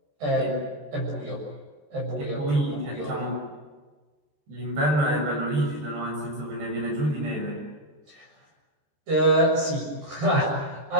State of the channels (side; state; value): left; late; 13 ms